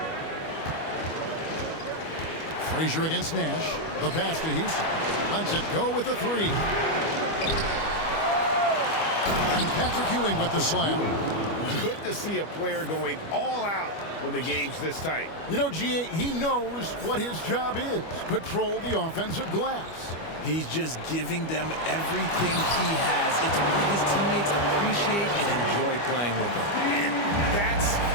Frazier against Nash. The pass to Houston. Lets it go with the three. And Patrick Ewing with the slam. Good to see a player going all out when the game's this tight. You know, G.A., he knows what his job is. Patrol the offensive glass. He's just giving them everything he has. It's why his teammates appreciate and enjoy playing with him. And that's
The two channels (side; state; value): right; late; 25 ms